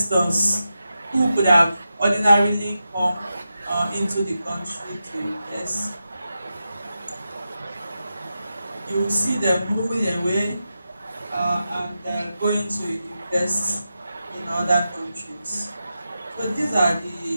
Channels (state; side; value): inverted; both; correlation -0.90